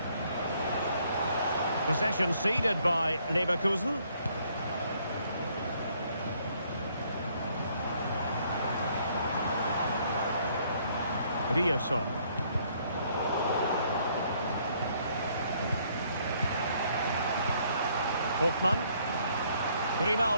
Possession ceded by Leverkusen. Ryerson. Hoffmann.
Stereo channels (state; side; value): inverted; both; correlation -0.66